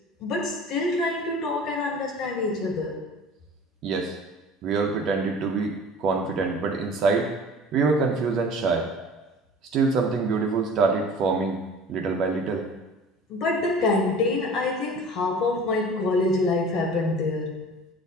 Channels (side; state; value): both; normal; correlation 0.43